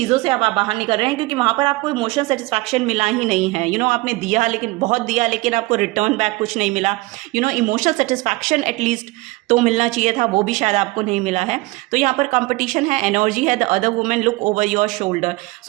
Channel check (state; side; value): quieter; left; 22.1 dB